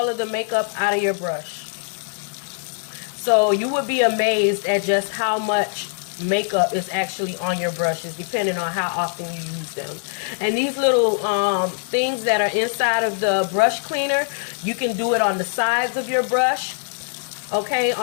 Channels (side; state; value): right; silent; digital silence